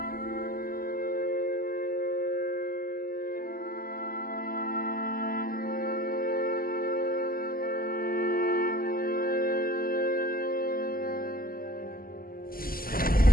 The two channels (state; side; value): late; right; 0.42 ms